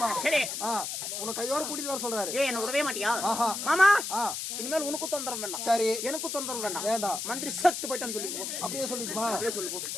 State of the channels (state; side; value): noise; left; hiss, 4 dB below the sound